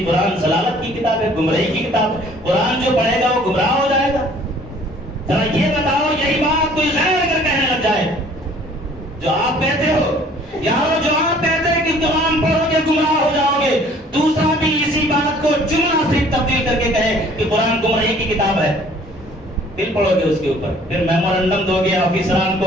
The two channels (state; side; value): normal; both; correlation 0.55